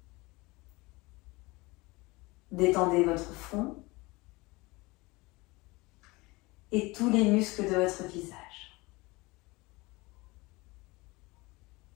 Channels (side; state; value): right; quieter; 23.3 dB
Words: Détendez votre front et tous les muscles de votre visage.